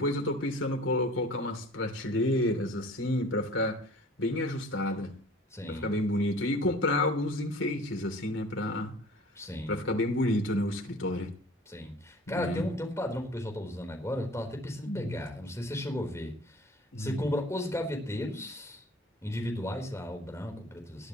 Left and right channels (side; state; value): both; normal; correlation 0.46